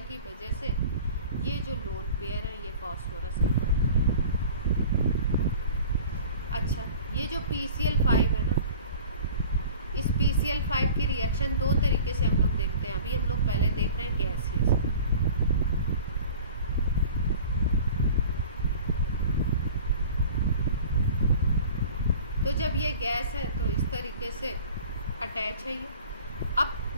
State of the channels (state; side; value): inverted; both; correlation -0.42